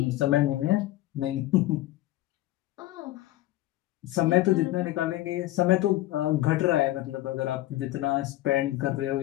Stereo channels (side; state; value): right; quieter; 16.1 dB